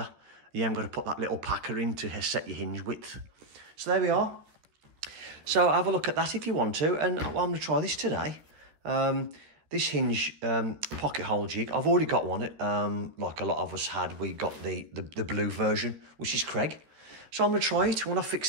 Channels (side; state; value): left; late; 13 ms